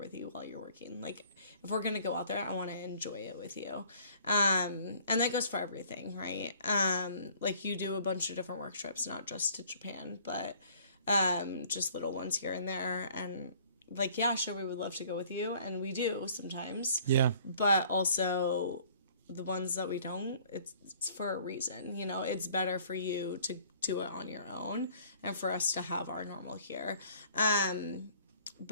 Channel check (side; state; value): both; inverted; correlation -0.55